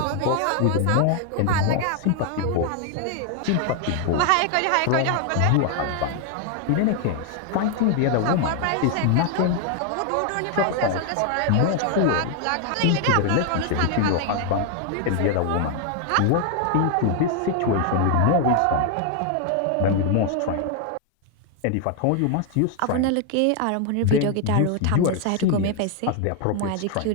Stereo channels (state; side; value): different; both; correlation 0.00